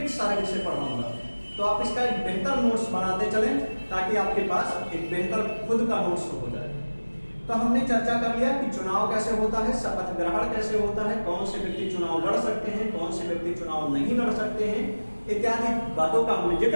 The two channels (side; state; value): both; inverted; correlation -1.00